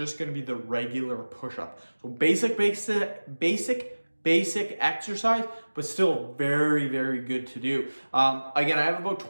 going to be the regular push-up. So basic exercise, but still very, very good to do. Again, I have about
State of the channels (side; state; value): both; inverted; correlation -1.00